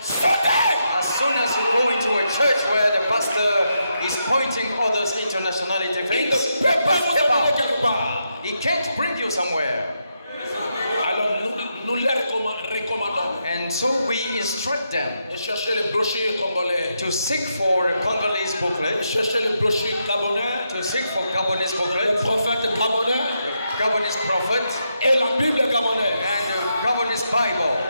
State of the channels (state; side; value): inverted; both; correlation -0.83